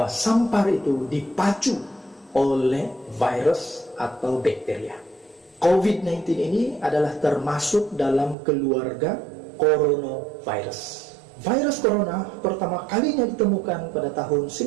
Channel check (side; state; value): left; drops out; at 8.3 s